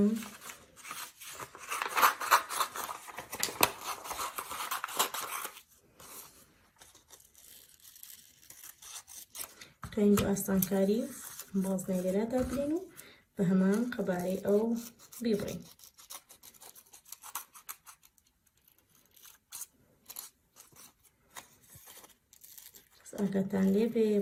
توانین بۆ ئاسانکاری بازنەی لێرەدا بلێن و بە هەمان قەبارەی ئەو بیبڕین. ئاگاتان لێ بێ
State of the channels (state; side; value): identical; both; correlation 1.00